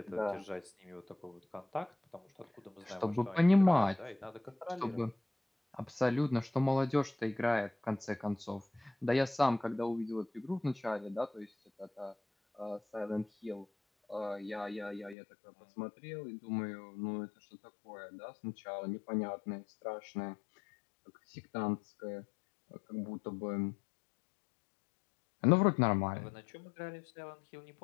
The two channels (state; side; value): drops out; right; at 15.2 s